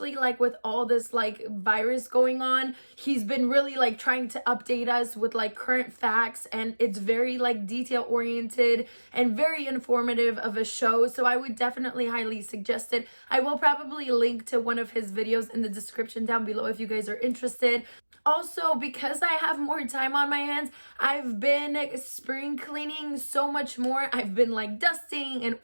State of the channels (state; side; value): inverted; both; correlation -1.00